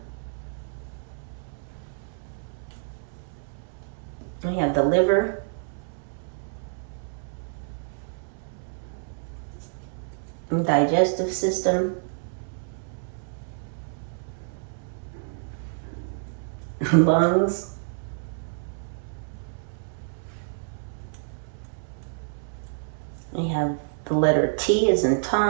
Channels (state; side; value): silent; left; 59 dB below the other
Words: We have the liver, and digestive system, lungs, we have the letter T as in